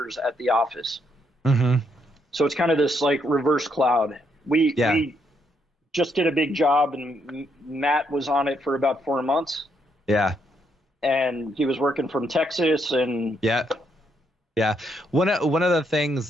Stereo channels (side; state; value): both; normal; correlation 0.75